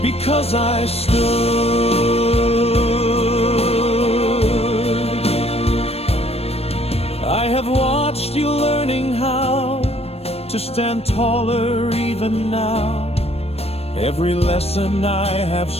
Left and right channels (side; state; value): right; late; 0.29 ms